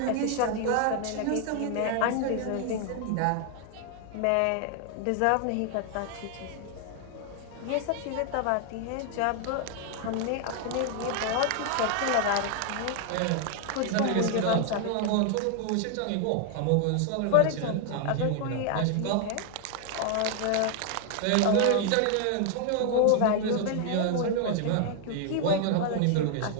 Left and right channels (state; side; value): different; both; correlation 0.00